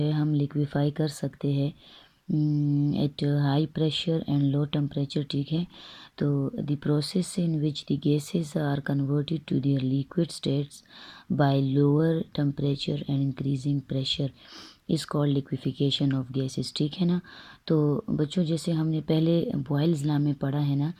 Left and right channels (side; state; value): both; identical; correlation 1.00